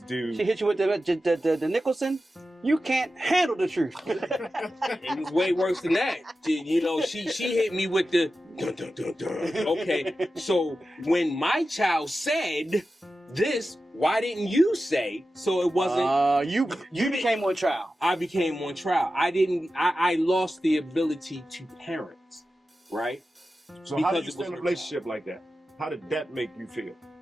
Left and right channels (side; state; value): both; normal; correlation 0.93